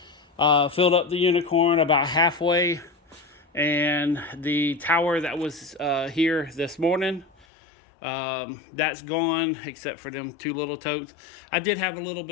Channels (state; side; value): drops out; right; at 7.5 s